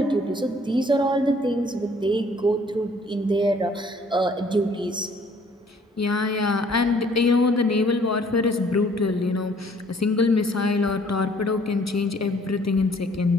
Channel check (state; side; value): normal; both; correlation 0.59